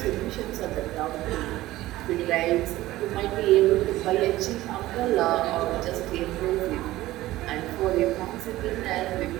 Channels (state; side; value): quieter; left; 16.6 dB